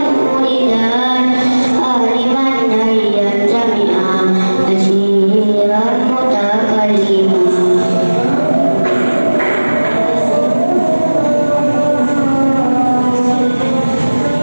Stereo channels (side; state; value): both; inverted; correlation -1.00